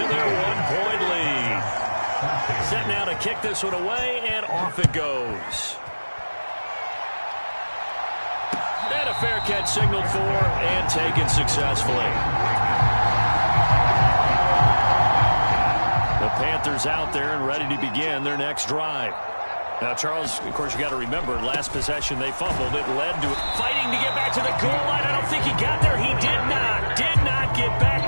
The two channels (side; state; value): both; inverted; correlation -1.00